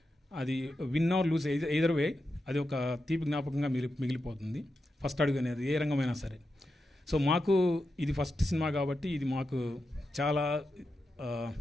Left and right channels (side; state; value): both; normal; correlation 0.88